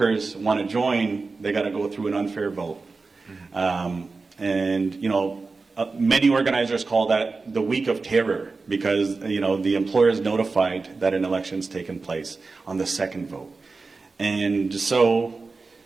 want to join, they got to go through an unfair vote. Many organizers call that the week of terror because the employer is notified that an election's taken place on the second vote. And so,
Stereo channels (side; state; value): left; quieter; 4.0 dB